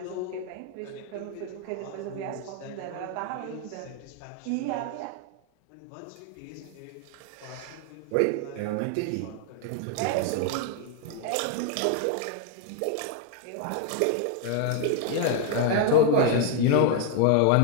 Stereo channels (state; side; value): different; both; correlation 0.00